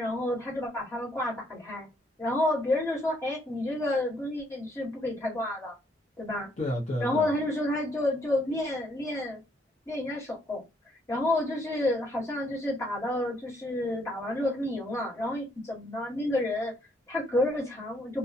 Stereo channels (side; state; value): both; normal; correlation 0.70